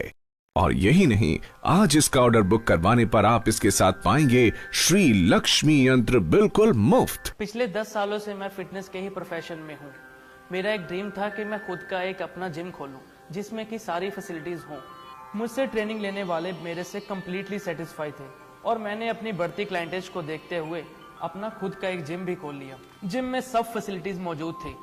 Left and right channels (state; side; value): identical; both; correlation 1.00